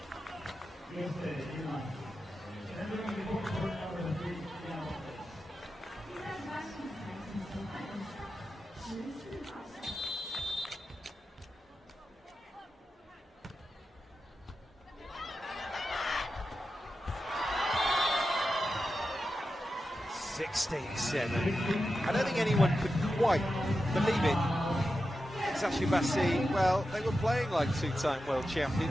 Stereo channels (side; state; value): both; normal; correlation 0.91